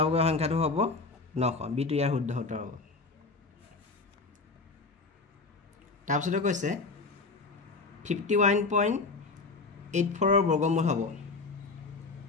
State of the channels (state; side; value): quieter; right; 3.9 dB